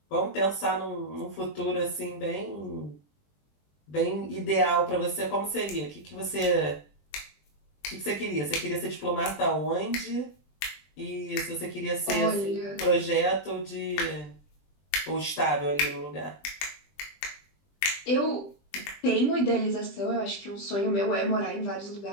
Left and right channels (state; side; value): late; right; 20 ms